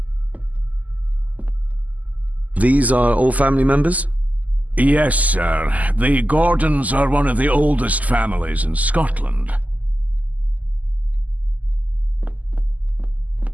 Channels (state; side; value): late; left; 0.077 ms